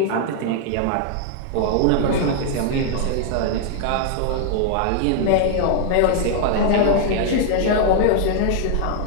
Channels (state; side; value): different; both; correlation 0.00